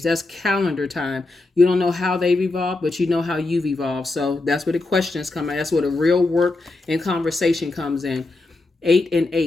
That's calendar time. You don't know how they've evolved, but you know how you've evolved. So that's where the questions come in. That's where the real work and conversation comes in. 8 and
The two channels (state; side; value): quieter; right; 3.2 dB